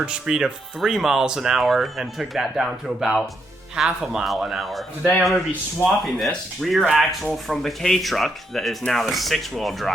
speed of 3 miles an hour and took that down to about half a mile an hour. Today I'm gonna be swapping this rear axle from the K-Truck that is now the 6-wheel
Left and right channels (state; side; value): normal; both; correlation 0.78